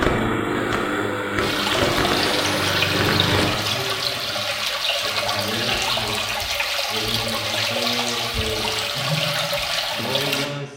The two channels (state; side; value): identical; both; correlation 1.00